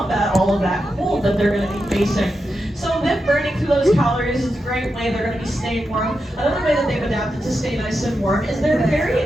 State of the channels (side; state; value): both; normal; correlation 0.88